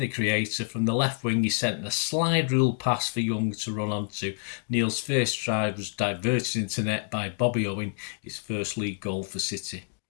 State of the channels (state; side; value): silent; right; 60 dB below the other